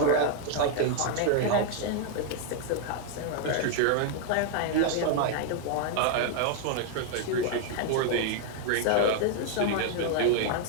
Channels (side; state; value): both; different; correlation 0.00